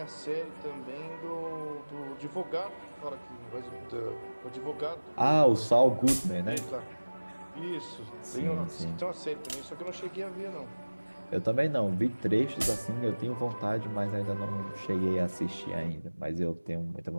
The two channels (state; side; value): inverted; both; correlation -1.00